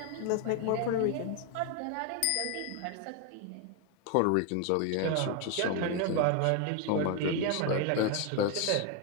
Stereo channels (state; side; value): different; both; correlation 0.01